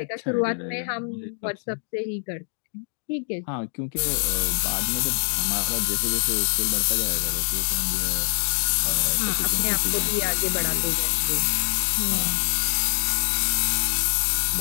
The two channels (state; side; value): silent; right; 57 dB below the other